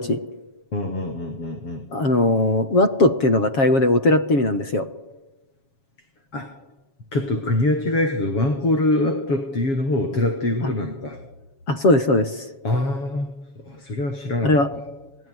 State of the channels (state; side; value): late; right; 7.3 ms